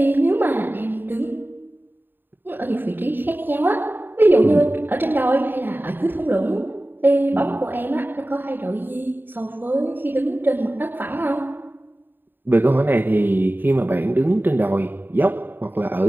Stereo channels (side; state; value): left; late; 0.094 ms